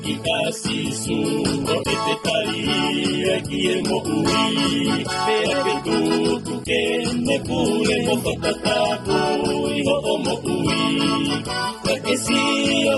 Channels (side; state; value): both; identical; correlation 1.00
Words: Sisu koe Kie mo'ui, pea ke tuku kene pule mo whakatapu iho o mo'ui. Kakesi o